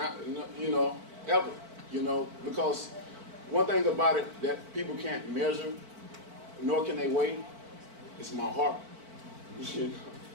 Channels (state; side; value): late; left; 4.5 ms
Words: you know, ever. You know, because one thing about it that people can't measure, nor can they weigh, is my heart. You know,